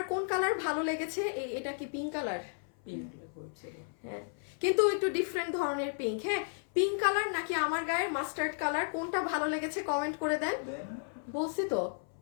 কোন কালার ভালো লেগেছে? এটা কি পিঙ্ক কালার? হ্যাঁ কিন্তু একটু ডিফারেন্ট ধরনের পিঙ্ক। হ্যাঁ পিঙ্ক কালার নাকি আমার গায়ে মাস্টার্ড কালার, কোনটা ভালো লেগেছে কমেন্ট করে দেন। বলছি তো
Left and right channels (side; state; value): right; silent; 55 dB below the other